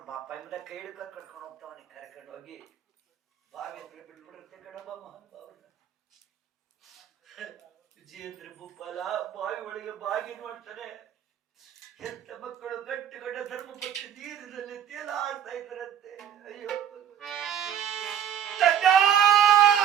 ಬಾಪ ಎಂಬುದ ಕೈ ಹಿಡ್ಕೊಂಡು ಕರ್ಕೊಂಡು ಹೋಗ್ತಾವನಿ. ಕರ್ಕೊಂಡು ಹೋಗಿ ಬಾವಿ ಹತ್ರ ಬಿಟ್ಬಿಡುತ್ತೆ ಕಣಬ ಮಹಾನುಭಾವನ. ವಿಜಯೇಂದ್ರ ಭೂಪಾಲ ಬಾವಿ ಒಳಗೆ ಬಾಗಿ ನೋಡ್ತಾನೆ. ಎಂತ ಮಕ್ಕಳು ಗಟ್ಟಿಗಡ್ಡ ಧರ್ಮಪತ್ನಿ ನೀರಿನಲ್ಲಿ ತೇಲಾಡ್ತಾ ಇದ್ರಂತೆ. ಅಯ್ಯೋ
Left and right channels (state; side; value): quieter; left; 9.6 dB